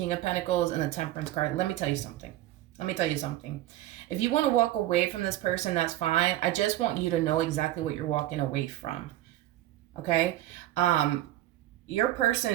of Pentacles and the Temperance card. Let me tell you something. Let me tell you something. If you want to walk away from this person, that's fine. I just want you to know exactly what you're walking away from. Okay? Your person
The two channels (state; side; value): quieter; left; 14.8 dB